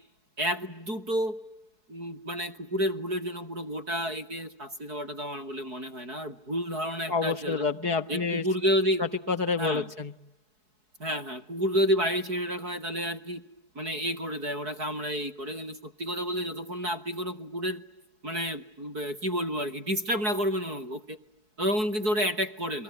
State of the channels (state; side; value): late; left; 4.7 ms